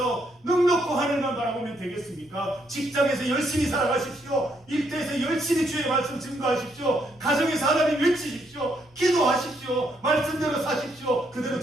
넉넉고 하늘만 바라보면 되겠습니까? 직장에서 열심히 살아가십시오. 일터에서 열심히 주의 말씀 증거하십시오. 가정에서 하나님 외치십시오. 기도하십시오. 말씀대로 사십시오. 그대로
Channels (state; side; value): normal; both; correlation 0.74